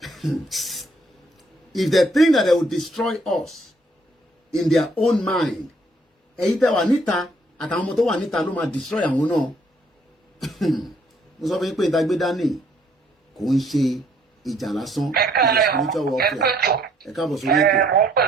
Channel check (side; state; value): both; normal; correlation 0.66